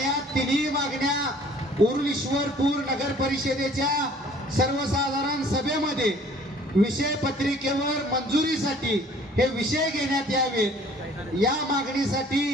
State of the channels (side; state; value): both; normal; correlation 0.54